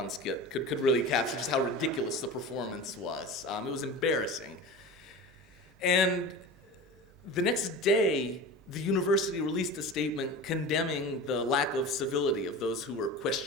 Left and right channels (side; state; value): both; normal; correlation 0.32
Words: skit could really capture just how ridiculous the performance was. It was embarrassing. And the next day, the university released a statement condemning the lack of civility of those who were